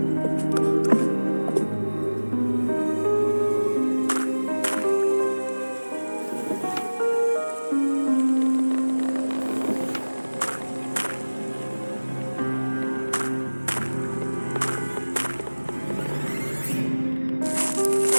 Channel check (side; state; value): both; inverted; correlation -1.00